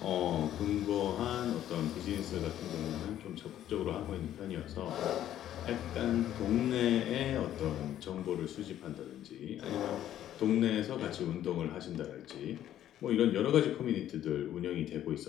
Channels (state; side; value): quieter; right; 11.7 dB